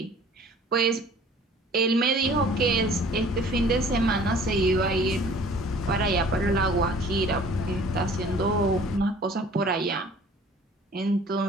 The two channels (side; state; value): both; normal; correlation 0.50